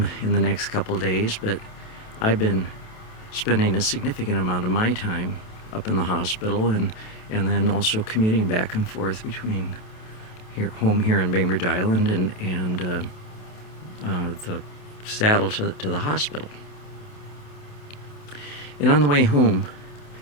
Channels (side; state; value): right; late; 28 ms